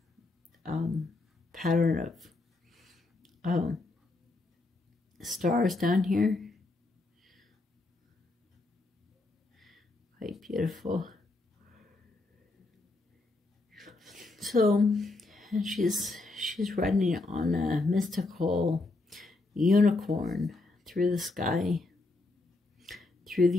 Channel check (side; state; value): right; quieter; 3.2 dB